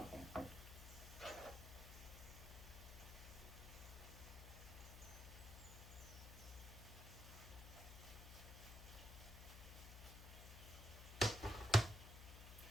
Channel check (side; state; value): left; noise; hum, 10 dB below the sound